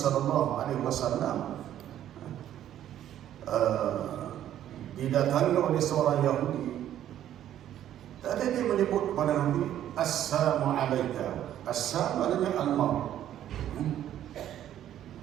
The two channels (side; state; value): left; quieter; 11.5 dB